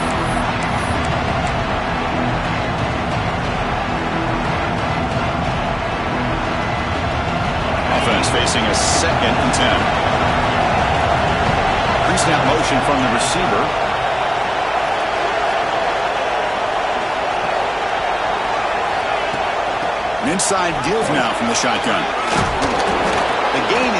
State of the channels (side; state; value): right; noise; hum, 22 dB below the sound